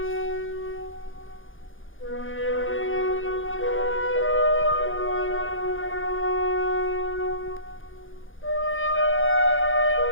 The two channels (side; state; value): right; late; 0.58 ms